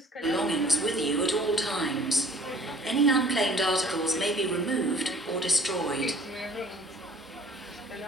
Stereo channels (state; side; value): normal; both; correlation 0.52